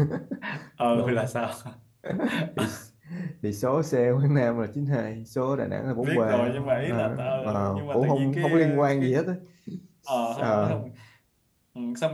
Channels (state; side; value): identical; both; correlation 1.00